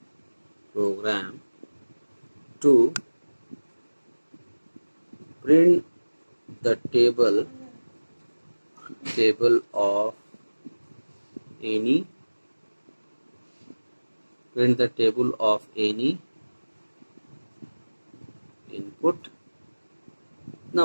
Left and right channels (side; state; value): both; inverted; correlation -1.00